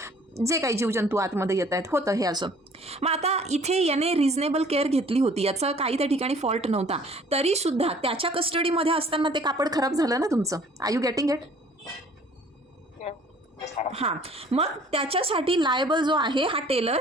जे काही जीवजंतू आतमध्ये येत आहेत होतं हे असं. मग आता इथे याने रिझनेबल केअर घेतली होती, याचा काही त्या ठिकाणी फॉल्ट नव्हता, तरीसुद्धा त्याच्या कस्टडीमध्ये असताना ते कापड खराब झालं ना तुमचं. I you getting it? हां, मग त्याच्यासाठी लायबल जो आहे हा टेलर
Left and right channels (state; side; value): normal; both; correlation 0.54